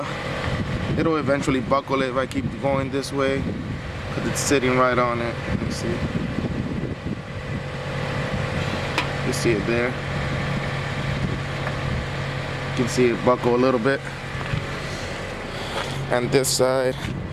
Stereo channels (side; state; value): both; identical; correlation 1.00